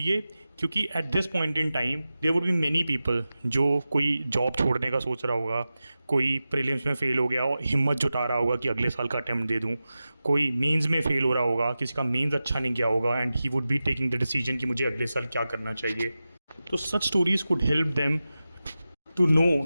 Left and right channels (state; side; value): inverted; both; correlation -0.94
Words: क्योंकि at this point in time there would be many people जो कोई job छोड़ने का सोच रहा होगा, कोई प्रीलिम्स में फ़ेल हो गया और हिम्मत जुटा रहा होगा कि अगले साल का अटैम्प्ट दे दूं, कोई मेंस में फ़ेल हो रहा होगा, किसी का मेंस अच्छा नहीं गया होगा and he would be taking the decision कि मुझे अगले साल क्या करना चाहिए। तो such stories could help them to know